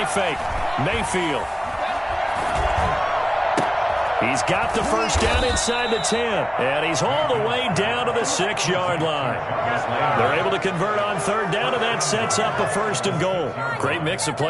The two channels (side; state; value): both; identical; correlation 1.00